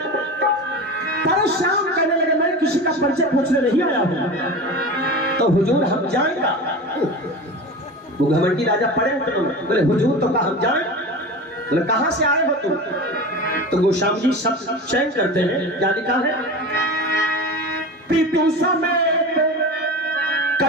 परशुराम कहने लगे मैं किसी का परिचय पूछने नहीं आया हूं, तो हुजूर हम जाएगा। वो घमंडी राजा पड़े उतरे, बोले हुजूर तो कहा हम जाए। बोले कहां से आए हो तुम? तो गोस्वामी जी सब चयन करते हैं। क्या लिखा है? पीतु समेत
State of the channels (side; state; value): both; normal; correlation 0.30